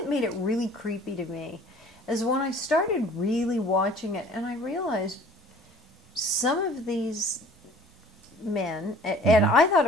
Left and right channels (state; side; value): normal; both; correlation 0.50